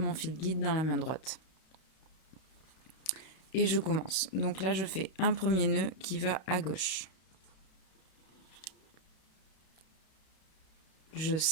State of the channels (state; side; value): late; right; 32 ms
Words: fil guide dans la main droite. Et je commence. Donc là, je fais un premier nœud qui va à gauche. Je